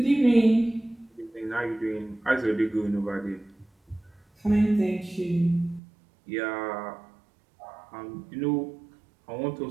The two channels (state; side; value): drops out; left; at 5.8 s